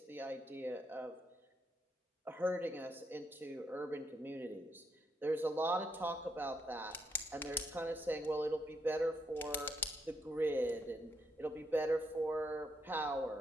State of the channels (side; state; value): both; normal; correlation 0.78